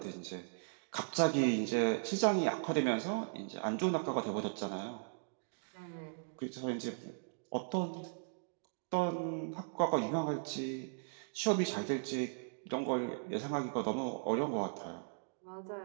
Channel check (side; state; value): left; silent; digital silence